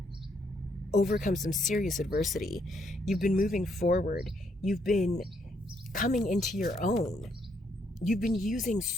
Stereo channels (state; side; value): normal; both; correlation 0.73